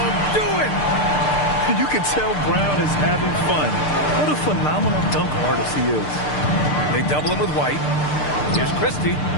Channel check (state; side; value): late; right; 6.7 ms